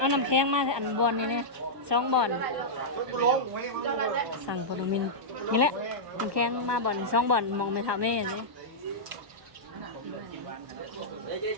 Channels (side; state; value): left; late; 1.2 ms